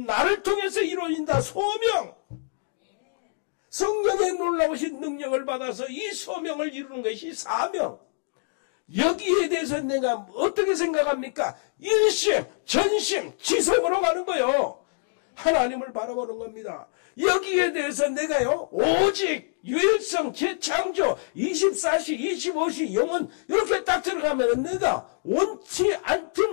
통해서 이루어진다. 소명. 성령의 놀라우신 능력을 받아서 이 소명을 이루는 것이 사명. 여기에 대해서 내가 어떻게 생각합니까? 일심, 전심, 지성으로 가는 거예요. 하나님을 바라보는 겁니다. 여기에 대해서 내가요, 오직 유일성, 재창조, 24시, 25시, 영혼 이렇게 딱 들어가면 내가 원치 않든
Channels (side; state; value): right; silent; digital silence